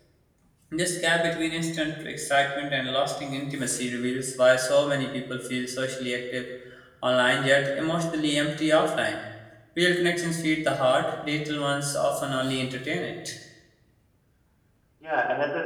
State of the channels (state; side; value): identical; both; correlation 1.00